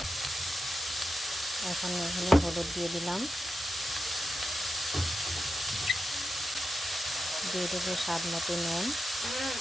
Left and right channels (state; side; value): normal; both; correlation 0.89